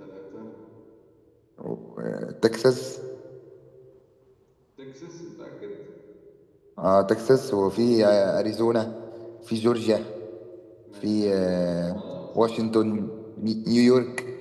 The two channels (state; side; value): identical; both; correlation 1.00